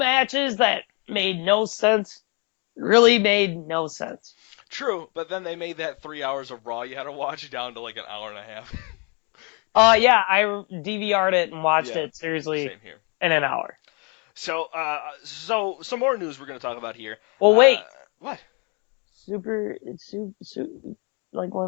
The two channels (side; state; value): right; quieter; 33.7 dB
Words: that made no sense, really made no sense. True, but then they made that 3 hours of Raw you had to watch down to like an hour and a half. Yeah, I DVR'd it and watched it seriously in an hour. So some more news we're going to talk about here. Well, wait. What? Super, like